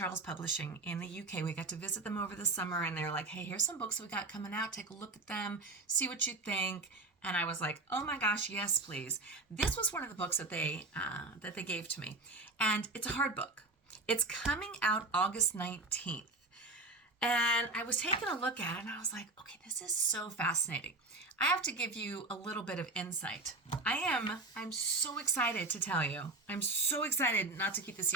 Publishing in the UK, we got to visit them over the summer, and they're like, hey, here's some books we got coming out. Take a look at them, see what you think. And I was like, oh my gosh, yes, please. This was one of the books that they gave to me. And it's a hard book. It's coming out August 19th. And I was taking a look at it, and I was like, okay, this is so fascinating. I have to give you a little bit of insight. I'm so excited to tell you. I'm so excited not to keep the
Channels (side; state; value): left; quieter; 3.1 dB